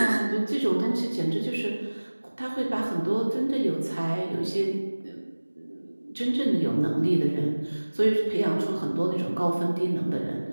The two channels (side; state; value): both; inverted; correlation -1.00